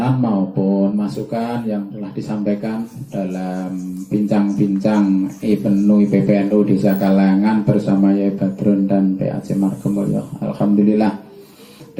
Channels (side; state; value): both; identical; correlation 1.00